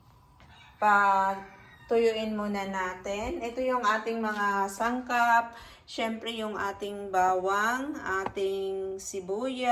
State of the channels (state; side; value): identical; both; correlation 1.00